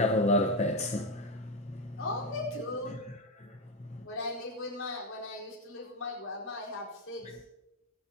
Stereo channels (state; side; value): normal; both; correlation 0.09